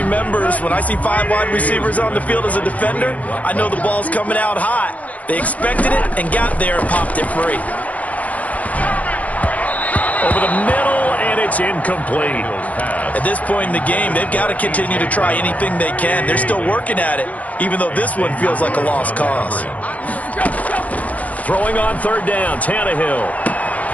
when I see 5 wide receivers on the field as a defender, I know the ball's coming out hot. They expected it and got there and popped it free. Over the middle, and it's incomplete. At this point in the game, they've got to continue to try anything they can. They're still working at it, even though this one feels like a lost cause. Throwing on 3rd down, Tannehill.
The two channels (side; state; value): right; late; 0.070 ms